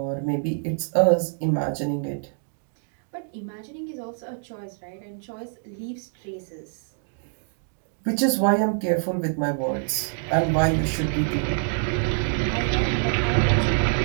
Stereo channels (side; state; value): left; silent; 61 dB below the other